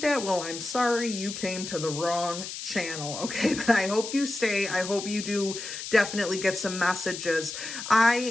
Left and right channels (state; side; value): noise; left; hiss, 8 dB below the sound